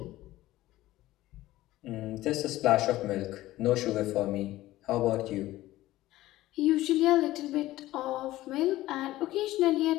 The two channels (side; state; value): right; quieter; 16.2 dB